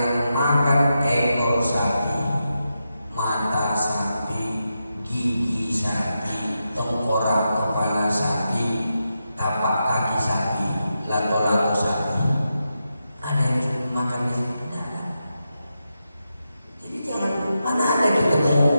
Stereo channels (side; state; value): both; inverted; correlation -0.87